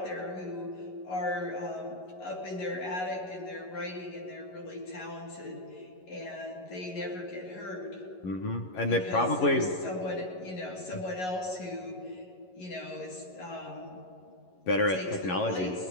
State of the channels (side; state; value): right; late; 11 ms